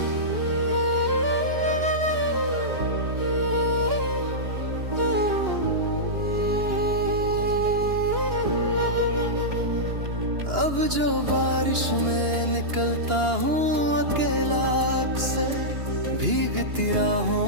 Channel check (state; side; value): late; left; 2.9 ms